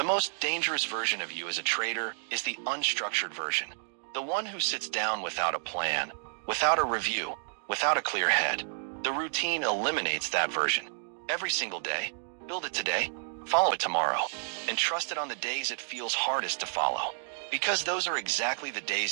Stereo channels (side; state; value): left; silent; digital silence